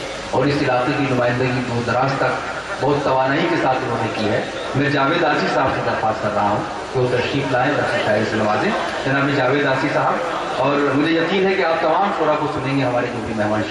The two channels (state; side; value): identical; both; correlation 1.00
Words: और इस इलाके की नुमाइंदगी दूर दराज तक बहुत तवानाई के साथ उन्होंने की है। मैं जावेद आसी साहब से दरख्वास्त कर रहा हूँ कि वो तशरीफ़ लाएँ और अपनी शायरी से नवाजें। जनाब जावेद आसी साहब, और मुझे यकीन है कि आप तमाम शोरा को सुनेंगे, हमारे जो भी मेहमान